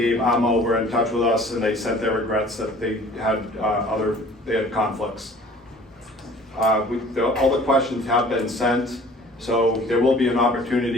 Amo were in touch with us, and they sent their regrets that they had conflicts. All the questions have been sent, so there will be an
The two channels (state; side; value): normal; both; correlation 0.50